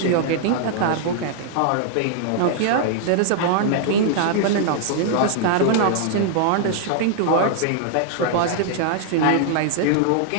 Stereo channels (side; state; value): both; different; correlation -0.01